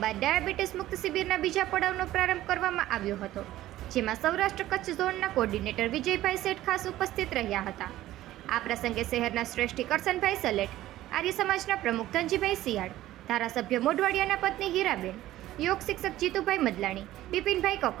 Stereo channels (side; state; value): left; quieter; 14.8 dB